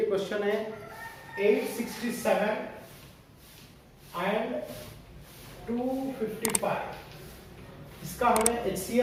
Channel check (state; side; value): identical; both; correlation 1.00